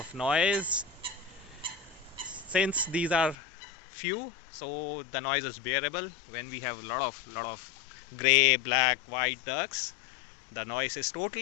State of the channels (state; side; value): drops out; right; at 3.4 s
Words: noise. Since these are few, so the noise is bearable. When we have a lot of gray, black, white ducks, the noise is